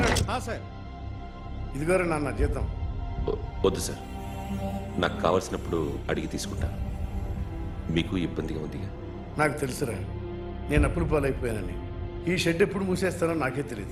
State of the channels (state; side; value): identical; both; correlation 1.00